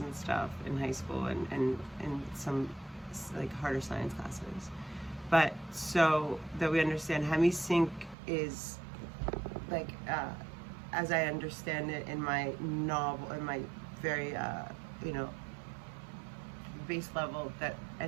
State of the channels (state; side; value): drops out; left; at 8.2 s